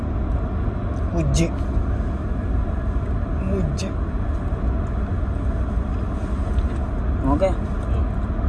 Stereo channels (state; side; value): identical; both; correlation 1.00